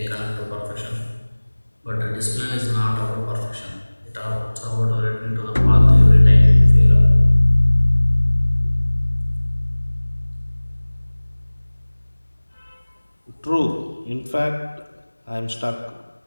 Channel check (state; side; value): inverted; both; correlation -1.00